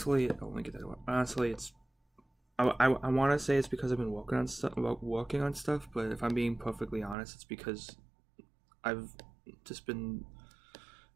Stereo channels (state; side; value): drops out; left; at 7.2 s